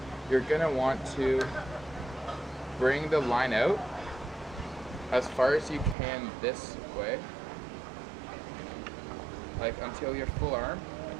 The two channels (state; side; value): drops out; left; at 6.0 s